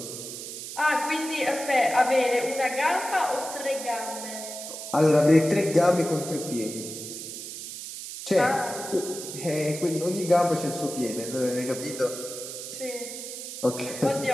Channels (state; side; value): noise; right; hiss, 9 dB below the sound